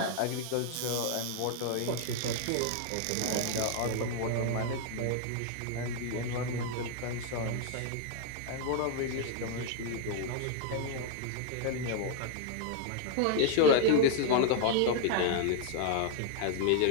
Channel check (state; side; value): different; both; correlation 0.00